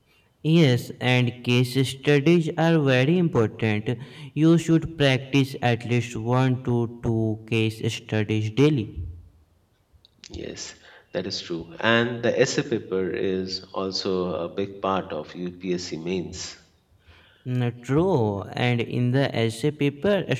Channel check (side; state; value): both; identical; correlation 1.00